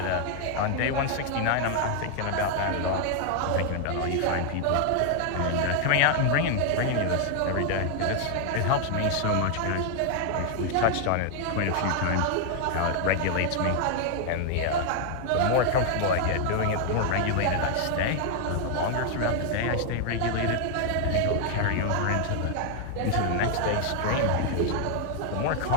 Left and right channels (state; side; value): different; both; correlation 0.00